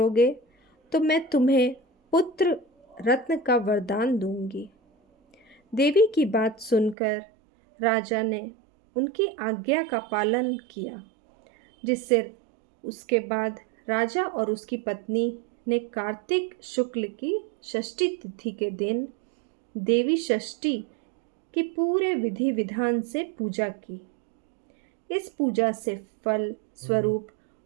तो मैं तुम्हें पुत्र रत्न का वरदान दूंगी। देवी की बात सुनकर राजा ने उनकी आज्ञा का पालन किया, जिससे उसके बाद राजा और उसकी पत्नी ने कार्तिक शुक्ल की षष्ठी तिथि के दिन देवी षष्ठी की पूरे विधि विधान से पूजा की। इस पूजा से फल स्वरूप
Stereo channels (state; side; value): drops out; left; at 7.0 s